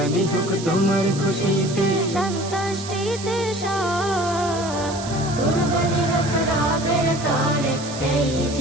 হোক তোমার খুশিতে সন্তুষ্টিতে সব কুরবানি হোক রবের তরে এই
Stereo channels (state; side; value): noise; right; hiss, 12 dB below the sound